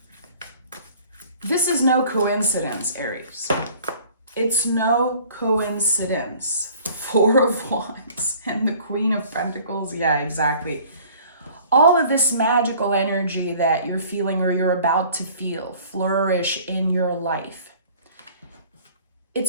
this is no coincidence, Aries. It's no coincidence. Four of Wands and the Queen of Pentacles. Yeah, exactly. All of this magical energy that you're feeling or you're about to feel flourish in your life.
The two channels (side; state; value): both; inverted; correlation -0.51